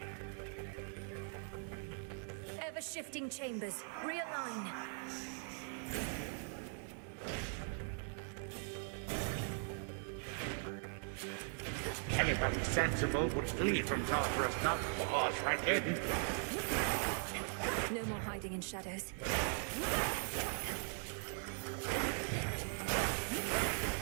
Ever-shifting chambers. Realign. Anybody sensible would flee from Tartarus, not pause right in. No more hiding in shadows.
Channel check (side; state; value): left; silent; 51 dB below the other